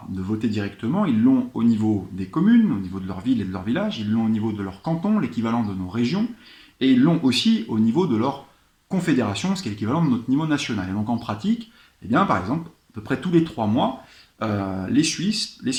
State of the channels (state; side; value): identical; both; correlation 1.00